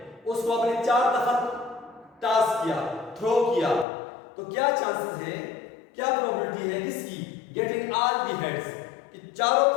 उसको आपने 4 दफा टॉस किया, थ्रो किया, तो क्या चांसेस है, क्या प्रोबेबिलिटी है किसकी, गेटिंग ऑल द हेड्स, कि चारों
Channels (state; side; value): drops out; right; at 3.9 s